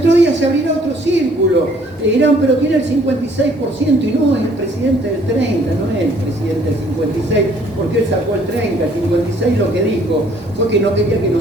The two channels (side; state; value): both; normal; correlation 0.60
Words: día se abrirá otro círculo. E dirán, pero tiene el 56%, y no es el presidente del 30%, no es el presidente del 56%, porque él sacó el 30%, el 56% lo que dijo fue que no quería que